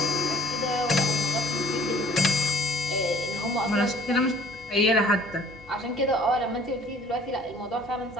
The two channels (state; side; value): normal; both; correlation 0.55